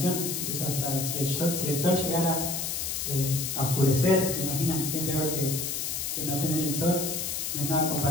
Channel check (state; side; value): noise; left; hiss, 2 dB below the sound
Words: por eso hasta si el sol llegara a oscurecer, ¿te imaginan qué peor que no tener el sol? No es nada